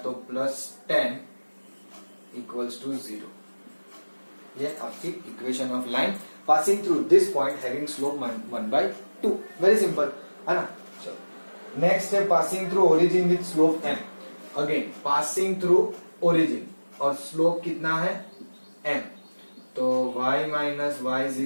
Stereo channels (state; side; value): inverted; both; correlation -1.00